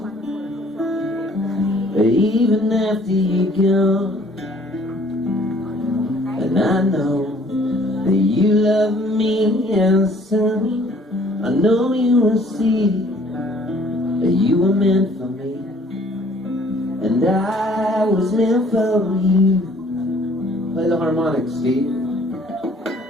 even after you're gone. And I know that you love me, and soon I know you will see that you were meant for me, and I was meant for you. Play the harmonics, Steve.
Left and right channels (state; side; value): normal; both; correlation 0.58